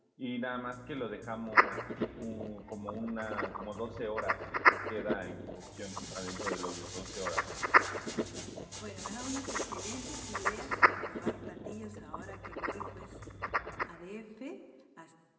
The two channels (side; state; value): both; identical; correlation 1.00